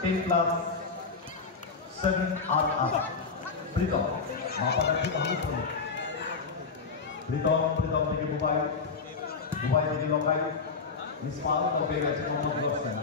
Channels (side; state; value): right; quieter; 4.8 dB